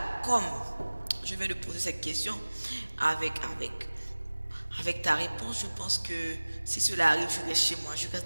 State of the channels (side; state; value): both; inverted; correlation -1.00